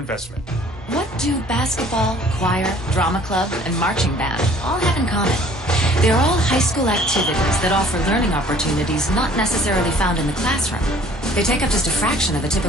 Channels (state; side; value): normal; both; correlation 0.54